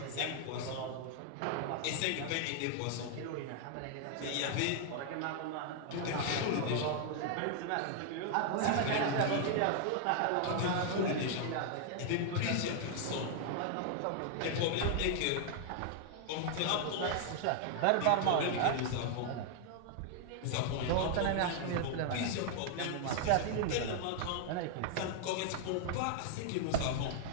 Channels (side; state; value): both; different; correlation 0.00